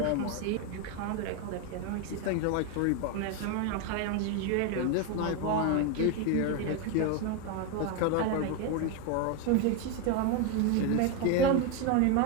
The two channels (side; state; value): both; different; correlation 0.02